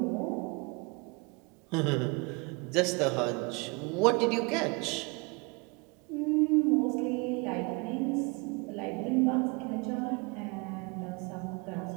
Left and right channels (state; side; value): quieter; left; 29.6 dB